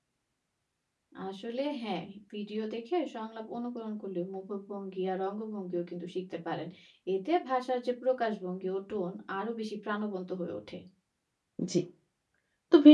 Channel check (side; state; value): both; identical; correlation 1.00